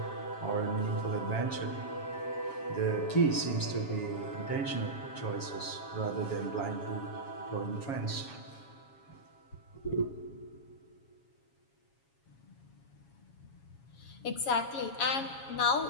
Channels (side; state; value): right; late; 7.3 ms